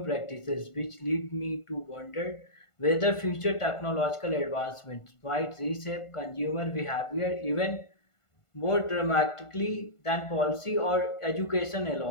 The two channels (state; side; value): late; right; 1.5 ms